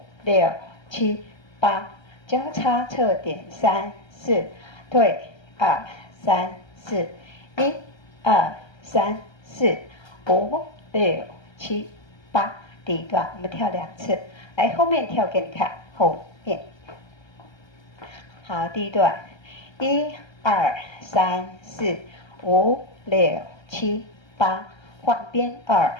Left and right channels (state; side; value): late; right; 1.3 ms